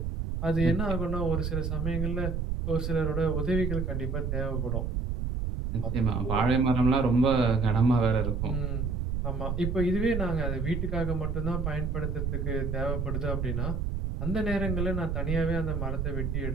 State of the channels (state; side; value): noise; right; rumble, 1 dB below the sound